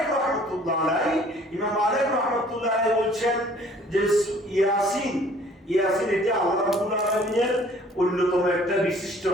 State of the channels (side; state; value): both; normal; correlation 0.55